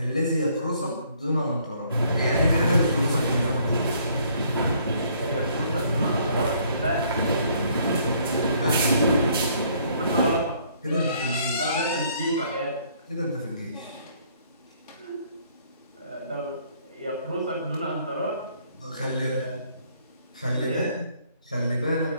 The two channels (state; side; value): inverted; both; correlation -0.64